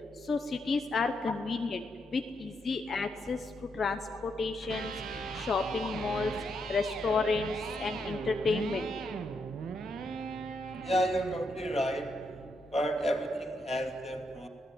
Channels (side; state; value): both; normal; correlation 0.79